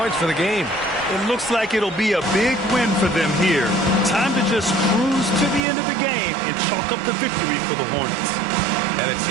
for the game. It looks like it'll be a big win for them here. Time to just cruise to the end of the game and chalk up the victory for the Hornets. And it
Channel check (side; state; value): left; drops out; at 5.6 s